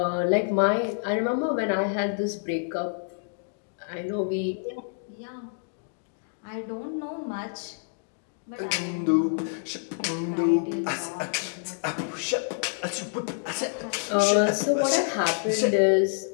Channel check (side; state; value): right; silent; digital silence